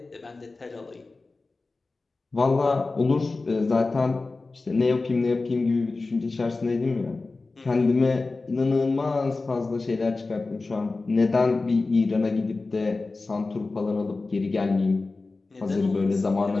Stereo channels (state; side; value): quieter; right; 3.6 dB